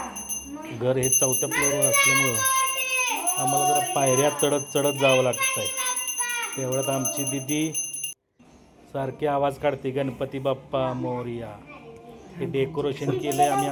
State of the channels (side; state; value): both; identical; correlation 1.00